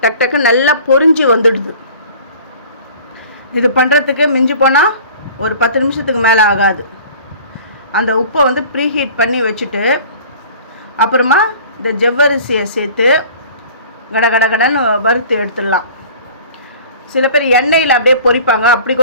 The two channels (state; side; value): inverted; both; correlation -0.46